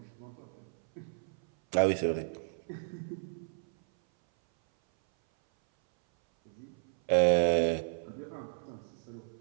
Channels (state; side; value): silent; left; 56 dB below the other